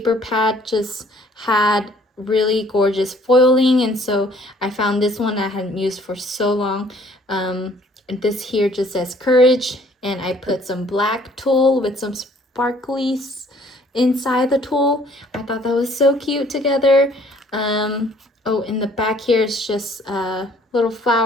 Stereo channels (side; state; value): both; normal; correlation 0.59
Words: pad just had really gorgeous foiling, and so I found this one I hadn't used for so long. And this here just says courage, and I put some black tulle with some sparklies inside the tulle. I thought that was so cute together. Oh, in the back here is just little